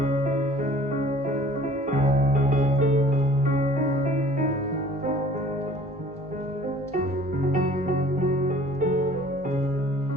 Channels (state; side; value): normal; both; correlation 0.51